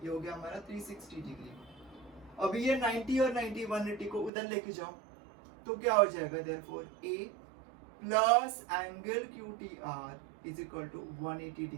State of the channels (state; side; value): drops out; left; at 4.3 s